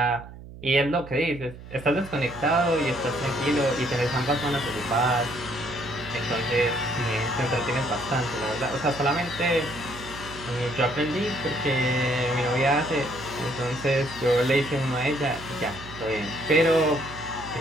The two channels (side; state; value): right; noise; hum, 15 dB below the sound